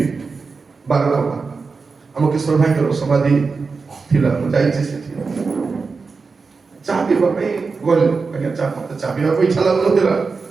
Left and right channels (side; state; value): left; quieter; 4.6 dB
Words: ବାରକମା ଆମ କିଶୋର ଭାଇଙ୍କର ସମାଧି ଥିଲା ମୁଁ ଯାଇଛି ସେଠି ଚାହା ପିଇବା ପାଇଁ ଗଲି ଆଜ୍ଞା ଚାହା ପିଇବାକୁ ଇଚ୍ଛା ଲାଗୁନଥିଲା